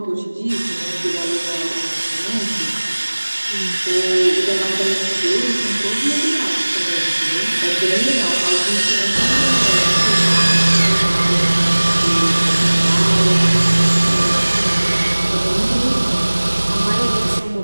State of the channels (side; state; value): both; inverted; correlation -1.00